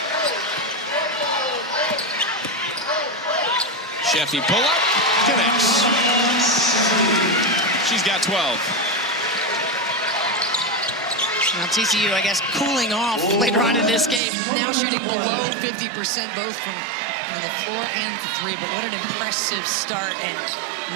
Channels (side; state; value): left; drops out; at 14.2 s